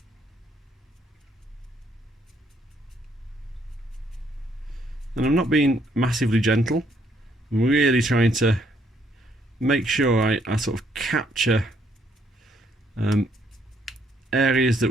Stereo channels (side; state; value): both; normal; correlation 0.70